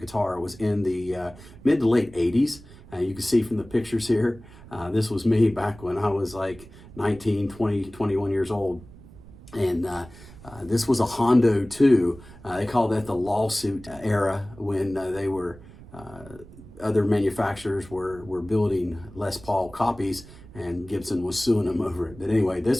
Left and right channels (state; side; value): noise; right; rumble, 19 dB below the sound